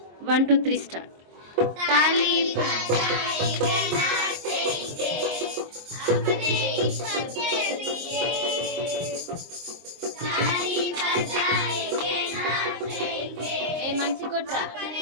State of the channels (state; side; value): late; left; 23 ms